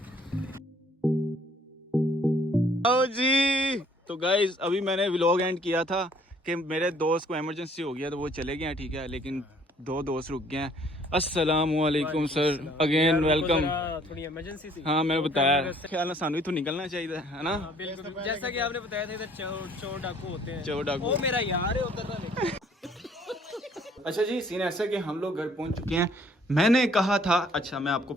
आओ जी, तो गाइज अभी मैंने व्लॉग एंड किया था कि मेरे दोस्त को इमरजेंसी हो गया तो वो चले गए हैं, ठीक है, लेकिन 2 दोस्त रुक गए हैं। अस्सलामुअलैकुम सर, अगेन वेलकम। थोड़ी इमरजेंसी थी। हाँ मैंने बताया ख्याल ना सानू इथों निकलना चाहिए है ना। बिल्कुल जैसा कि आपने बताया था इधर चोर डाकू होते हैं। चोर डाकू वो मेरा यार है उधर ना। अच्छा जी, सीन ऐसा कि हम लोग घर पहुंच चुके हैं। मैंने कहा था, अच्छा मैं आपको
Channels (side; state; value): both; normal; correlation 0.60